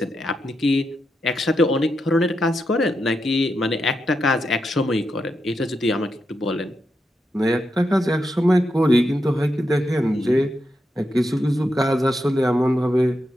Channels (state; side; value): normal; both; correlation 0.85